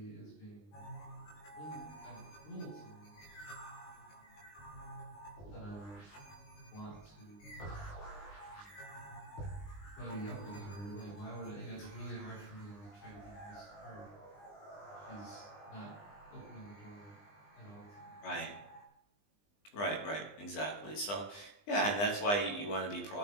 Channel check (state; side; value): late; right; 20 ms